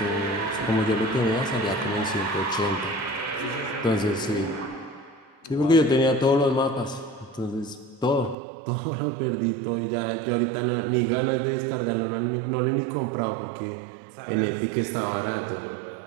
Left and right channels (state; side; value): drops out; left; at 8.3 s